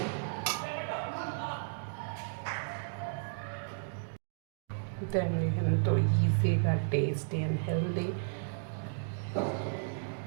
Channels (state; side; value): silent; left; digital silence